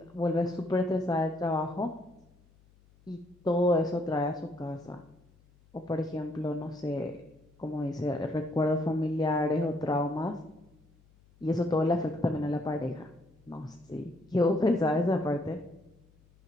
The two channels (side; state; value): left; noise; hum, 30 dB below the sound